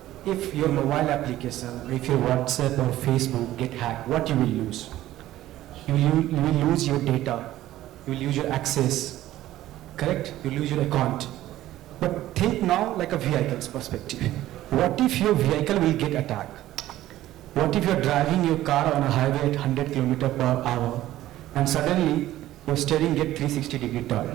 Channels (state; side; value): quieter; left; 14.5 dB